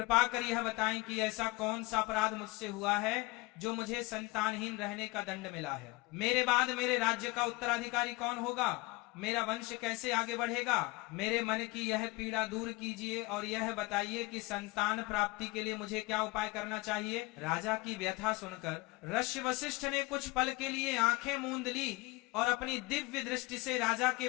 कर यह बताएं कि ऐसा कौन सा अपराध मुझसे हुआ है जो मुझे संतानहीन रहने का दंड मिला है? मेरे बाद मेरे राज्य का उत्तराधिकारी कौन होगा? मेरा वंश कैसे आगे बढ़ेगा? मेरे मन की यह पीड़ा दूर कीजिए और यह बताइए कि संतान प्राप्ति के लिए मुझे क्या उपाय करना चाहिए। राजा की व्यथा सुनकर ऋषि वशिष्ठ ने कुछ पल के लिए आंखें मूंद ली और अपनी दिव्य दृष्टि से राजा के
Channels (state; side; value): quieter; right; 23.7 dB